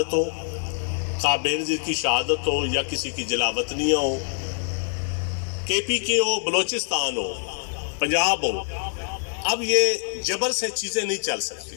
ہو، خواہ بینظیر کی شہادت ہو، یا کسی کی جلاوطنیاں ہو، کے پی کے ہو، بلوچستان ہو، پنجاب ہو، اب یہ جبر سے چیزیں نہیں چل سکتی.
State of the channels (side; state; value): right; silent; digital silence